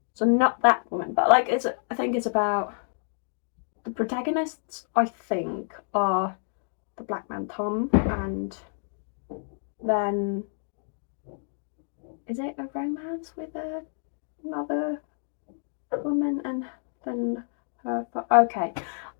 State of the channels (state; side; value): silent; right; digital silence